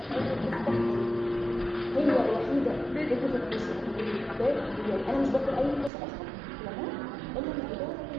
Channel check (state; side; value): drops out; left; at 5.9 s